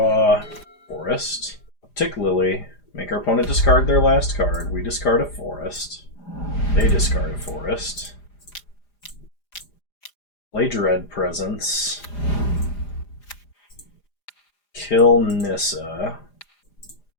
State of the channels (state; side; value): late; right; 4.9 ms